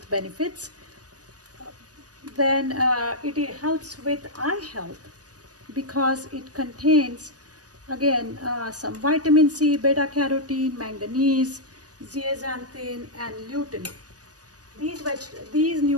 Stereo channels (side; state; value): left; late; 0.68 ms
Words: benefits. Then it helps with eye health because it contains again some vitamin C, beta carotene, manganese, zeaxanthin and lutein. These